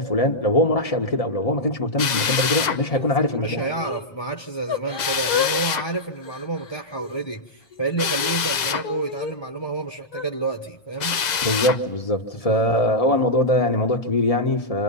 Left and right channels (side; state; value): right; late; 2.0 ms